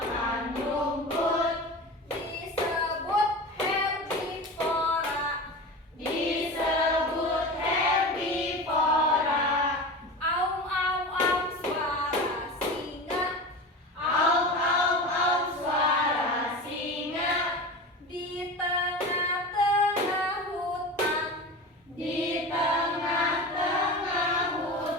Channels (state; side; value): normal; both; correlation 0.30